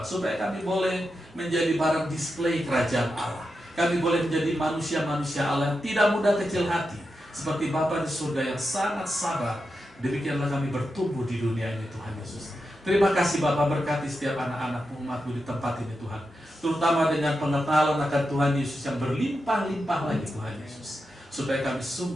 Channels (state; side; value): normal; both; correlation 0.88